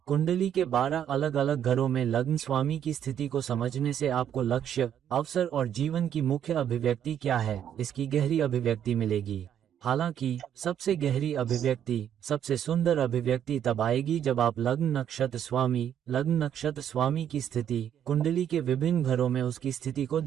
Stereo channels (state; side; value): quieter; left; 9.6 dB